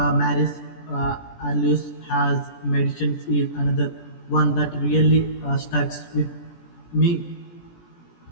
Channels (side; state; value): right; late; 17 ms